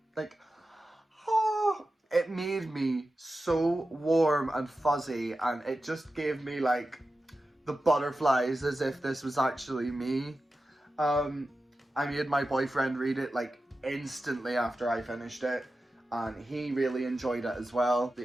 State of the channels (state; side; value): normal; both; correlation 0.93